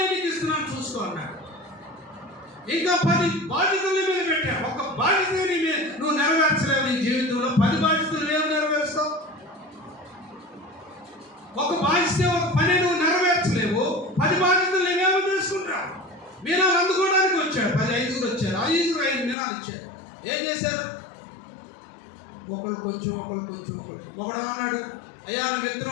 నీకు ఇస్తున్నాను, చూసుకో అన్నాడు. ఇంకా 10 బాధ్యతలు మీద పెట్టా. ఒక బాధ్యతని నువ్వు నెరవేర్చలేవు. నీ జీవితంలో 10 బాధ్యతలు ఏమి నెరవేరుస్తావు? ఒక బాధ్యత ఒక పని నువ్వు నెరవేర్చలేవు. 10 బాధ్యతలు నేనేమో తీసుకుంటావు. మీనాలు అందుకోవడానికి వచ్చాడు. 10 5 వచ్చారు. 5 మీనాలు ఇచ్చారు. ఏం చేశారు? ఒకళ్ళు కొంచెం ఒకడు అన్నాడు, అయ్యా నువ్వు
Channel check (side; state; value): right; drops out; at 19.4 s